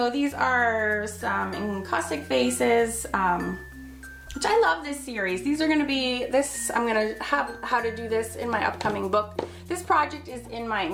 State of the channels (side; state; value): both; identical; correlation 1.00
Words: these are some encaustic faces, which I love this series. These are gonna be, I'm gonna have how to do this in my upcoming book. This project is in my